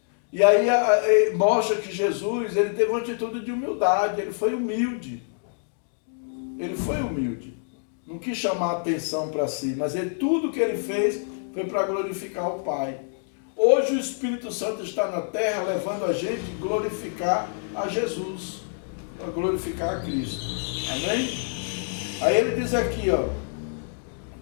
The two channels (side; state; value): right; silent; digital silence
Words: E aí mostra que Jesus, ele teve uma atitude de humildade, ele foi humilde. Ele foi humilde. Não quis chamar a atenção para si, mas tudo que ele fez foi para glorificar o Pai. Hoje o Espírito Santo está na terra levando a gente a glorificar a Jesus, a glorificar a Cristo. Amém? Aí ele diz aqui, ó,